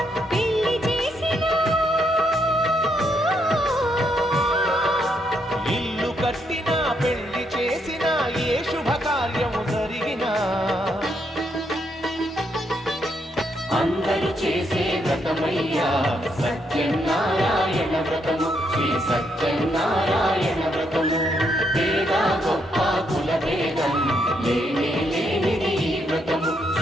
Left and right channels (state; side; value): normal; both; correlation 0.76